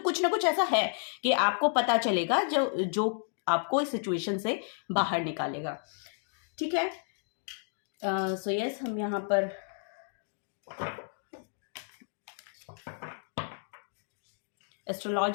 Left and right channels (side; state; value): right; silent; digital silence